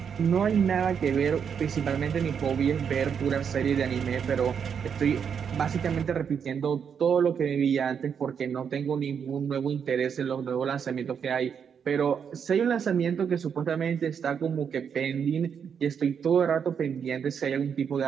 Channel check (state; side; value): quieter; left; 7.2 dB